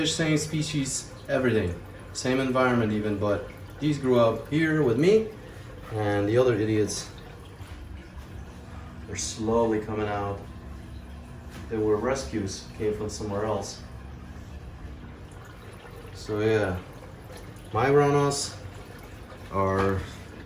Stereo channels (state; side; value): identical; both; correlation 1.00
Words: same species, everything, same environment even, but these grew up here with me, and the other idiots, they're slowly coming out. They were rescues, came from somewhere else. So yeah, my Ranas are